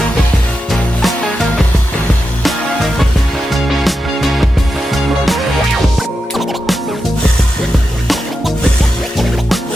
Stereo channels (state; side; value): normal; both; correlation 0.88